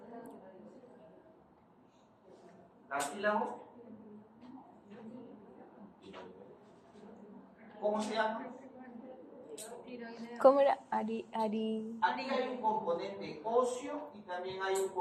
¿Cartílago? ¿Cómo se llama? ¿Cómo era? Aquí hay un componente óseo y también hay un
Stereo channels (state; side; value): identical; both; correlation 1.00